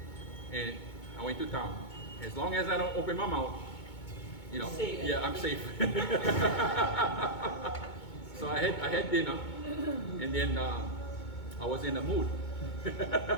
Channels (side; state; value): right; late; 2.2 ms